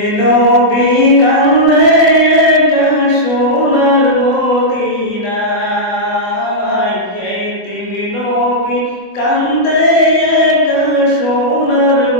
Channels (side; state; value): right; late; 25 ms